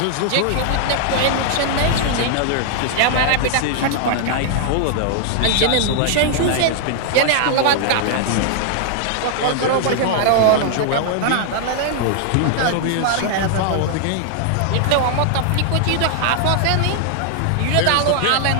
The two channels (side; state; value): both; different; correlation 0.00